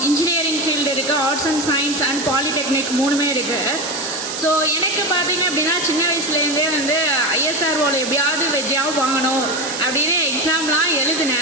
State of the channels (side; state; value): right; noise; hiss, 6 dB below the sound